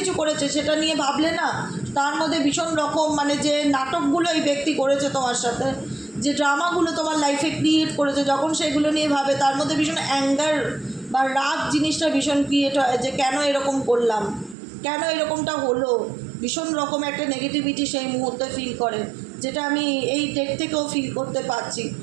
করেছে। সেটা নিয়ে ভাবলে না তার মধ্যে ভীষণ রকম মানে যে নাটকগুলো এই ব্যক্তি করেছে তোমার সাথে, যে ড্রামাগুলো তোমার লাইফে ক্রিয়েট করেছে, যখন সেগুলো নিয়ে ভাবে তার মধ্যে ভীষণ অ্যাঙ্গার বা রাগ জিনিসটা ভীষণ ক্রিয়েট হয়, যে কেন এরকম করলাম, কেন এরকমটা হলো, ভীষণ রকম একটা নেগেটিভিটি সেই মুহূর্তে ফিল করে, যেটা আমি এই ডেট থেকেও ফিল করতে পারছি।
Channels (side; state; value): left; drops out; at 14.6 s